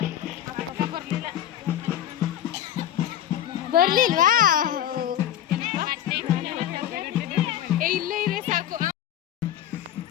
ಬರ್ಲಿಲ್ವಾ? ಇಲ್ಲೇ ಇರೇ ಸಾಕು.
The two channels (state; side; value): quieter; right; 11.4 dB